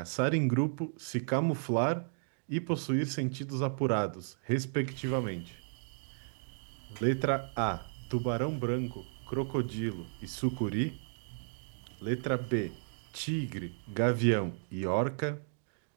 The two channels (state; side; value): silent; left; digital silence